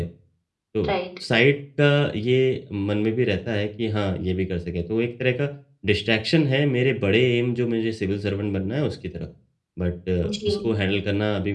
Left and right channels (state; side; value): identical; both; correlation 1.00